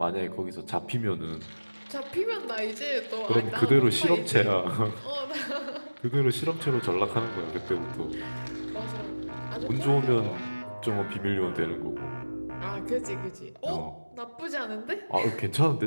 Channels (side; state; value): both; inverted; correlation -1.00